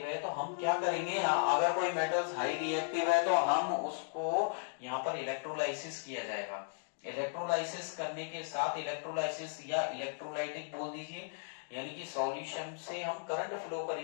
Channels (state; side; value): silent; right; digital silence